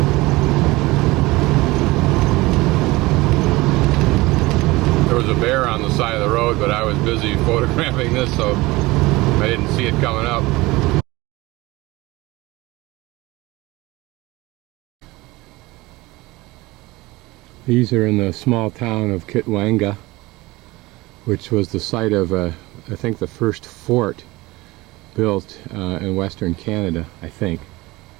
Bear on the side of the road, but I was busy photographing this, so I didn't see it coming up. These are in the small town of Kitwanga, which was the site of, I think, the first fort built in Western Canada, I think.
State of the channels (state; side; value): quieter; left; 20.9 dB